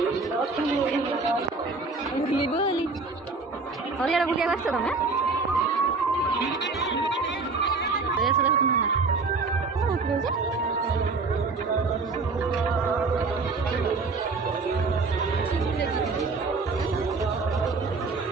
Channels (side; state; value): left; quieter; 4.1 dB